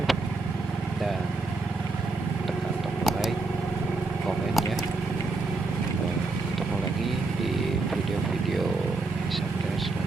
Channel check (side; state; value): left; quieter; 3.5 dB